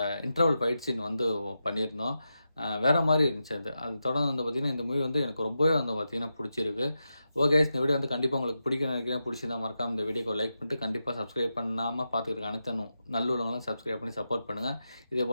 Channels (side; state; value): both; inverted; correlation -0.89